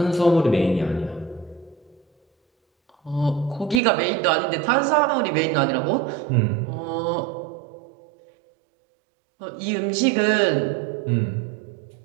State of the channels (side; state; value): left; drops out; at 3.8 s